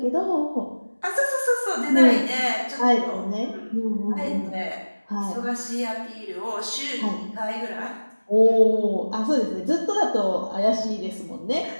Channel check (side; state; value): both; inverted; correlation -1.00